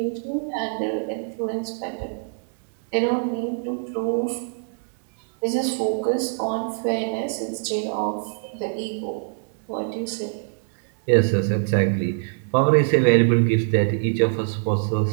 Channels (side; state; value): left; silent; digital silence